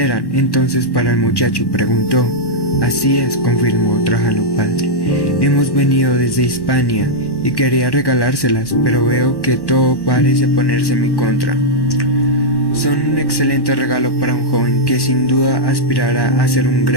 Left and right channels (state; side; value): late; right; 1.1 ms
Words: entonces para el muchacho?, preguntó. Así es, confirmó Trajano padre. Hemos venido desde Hispania y quería regalárselas, pero veo que todo parece ponerse en mi contra. Son un excelente regalo para un joven que sin duda aspirará a ser un